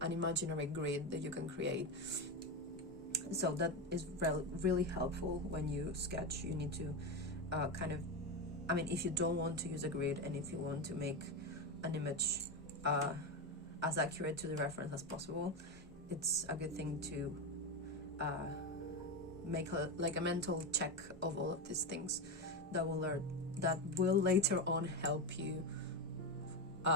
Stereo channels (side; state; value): both; normal; correlation 0.14